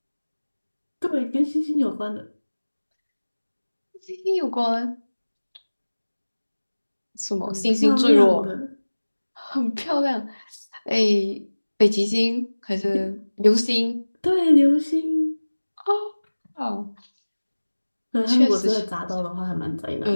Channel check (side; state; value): both; inverted; correlation -1.00